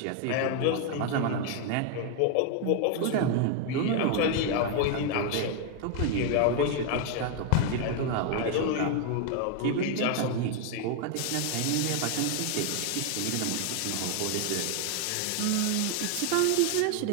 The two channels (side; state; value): both; different; correlation 0.01